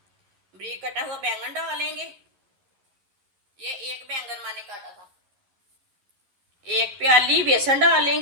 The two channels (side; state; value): left; late; 11 ms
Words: बारीक कटा हुआ बैंगन डालेंगे। ये एक बैंगन मैंने काटा था। एक प्याली बेसन